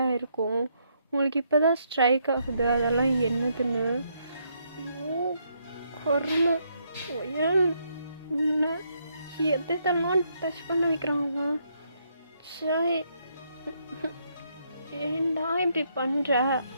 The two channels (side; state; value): both; inverted; correlation -0.75